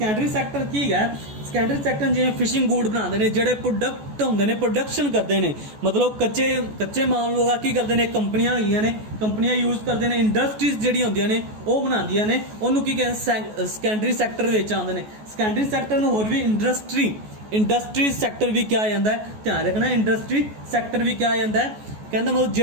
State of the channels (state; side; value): late; left; 14 ms